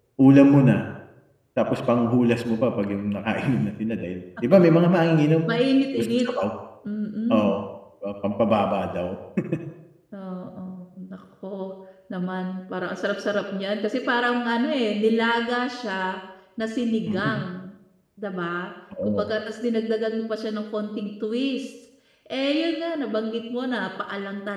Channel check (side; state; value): both; identical; correlation 1.00